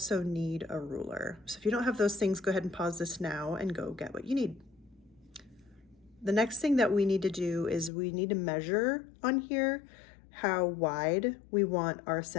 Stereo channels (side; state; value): right; drops out; at 7.9 s